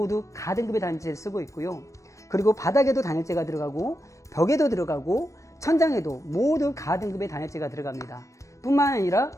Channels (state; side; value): late; right; 0.15 ms